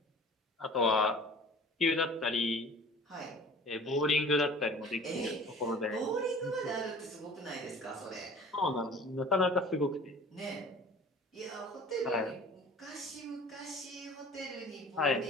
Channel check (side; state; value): both; normal; correlation 0.45